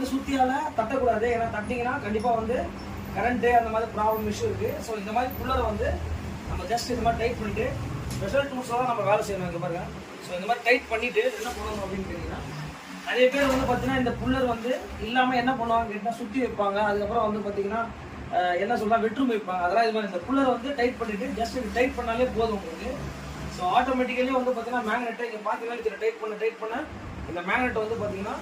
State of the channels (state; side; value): identical; both; correlation 1.00